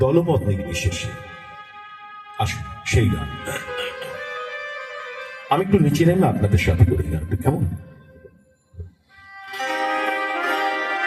দলমত নির্বিশেষে। আসুন সেই গান আমি একটু নিচে নেমে আপনাদের সাথে করি গানটা, কেমন?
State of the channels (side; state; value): both; identical; correlation 1.00